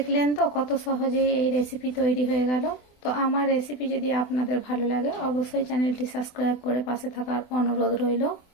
তো কত সহজেই এই রেসিপি তৈরি হয়ে গেল। তো আমার রেসিপি যদি আপনাদের ভালো লাগে অবশ্যই চ্যানেলটি সাবস্ক্রাইব করে পাশে থাকার অনুরোধ রইল।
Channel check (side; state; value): right; late; 24 ms